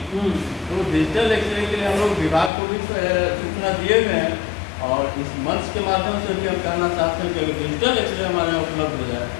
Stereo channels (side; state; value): right; drops out; at 2.5 s